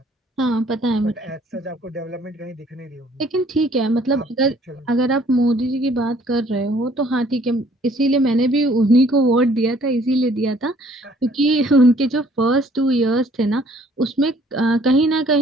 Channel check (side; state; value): both; normal; correlation 0.59